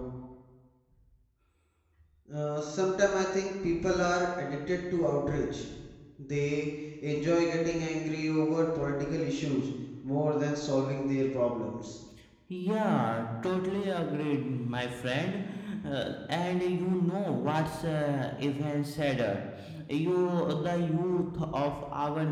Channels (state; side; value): identical; both; correlation 1.00